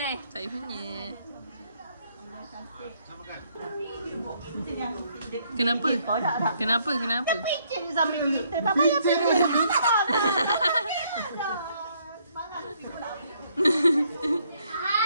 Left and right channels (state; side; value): inverted; both; correlation -0.69